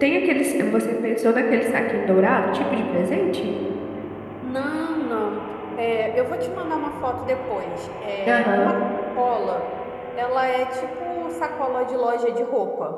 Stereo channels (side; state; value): both; identical; correlation 1.00